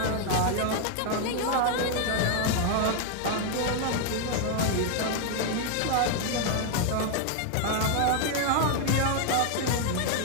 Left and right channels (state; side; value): different; both; correlation 0.00